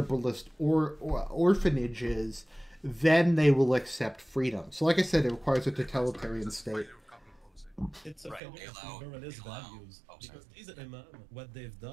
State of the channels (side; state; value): left; drops out; at 8.4 s